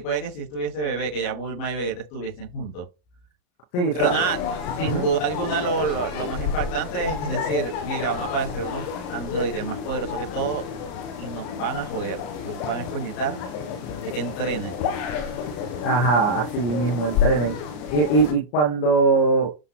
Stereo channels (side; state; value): right; late; 33 ms